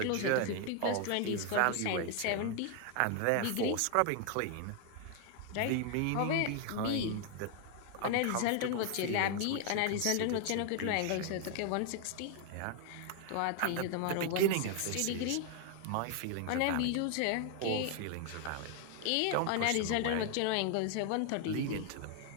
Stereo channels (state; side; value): different; both; correlation 0.00